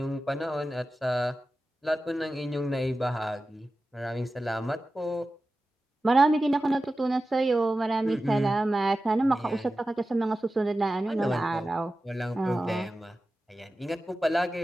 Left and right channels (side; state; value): both; normal; correlation 0.94